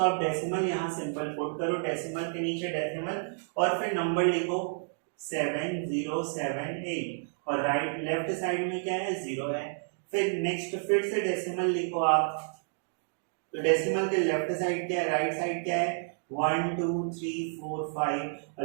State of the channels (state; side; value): silent; left; digital silence